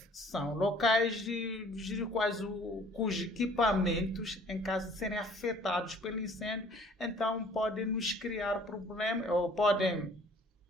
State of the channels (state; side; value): normal; both; correlation 0.55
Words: são locais cujos equipamentos, em caso de serem afetados pelo incêndio, então podem nos criar problemas, ou podem